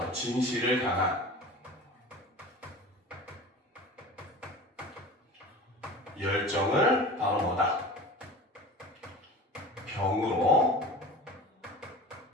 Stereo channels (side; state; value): both; normal; correlation 0.36